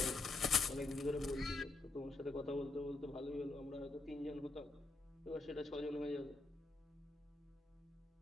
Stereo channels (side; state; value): right; quieter; 3.2 dB